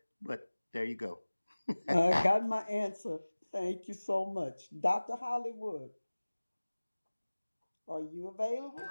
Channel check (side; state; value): both; inverted; correlation -1.00